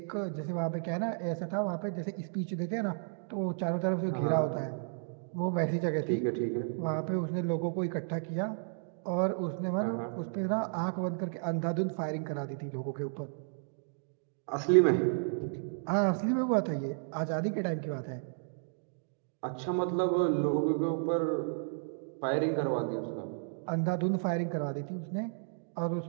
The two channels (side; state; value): left; silent; digital silence